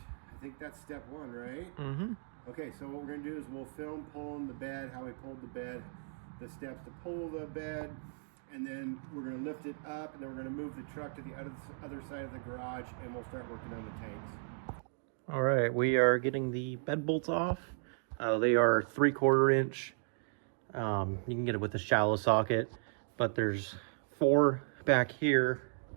think that's step one, right? Okay, so what we're going to do is we'll film pulling the bed, how we pulled the bed, the steps to pull the bed, and then we're going to lift it up, and then we're going to move the truck to the other side of the garage, and we'll start working on the tanks. All right, we are getting the bed bolts off. They are 3/4 inch. You can get it with a shallow socket, but there's 4 back here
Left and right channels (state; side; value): silent; left; digital silence